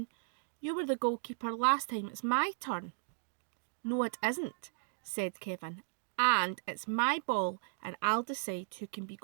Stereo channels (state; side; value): silent; left; digital silence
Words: You were the goalkeeper last time. It's my turn. No, it isn't, said Kevin. And it's my ball, and I'll decide who can be